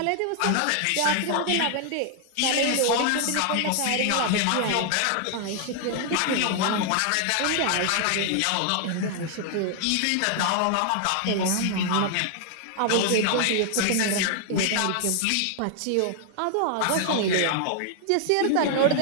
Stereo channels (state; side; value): different; both; correlation 0.00